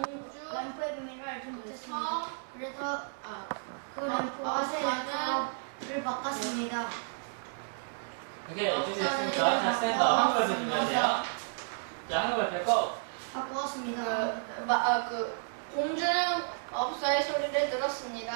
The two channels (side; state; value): left; silent; digital silence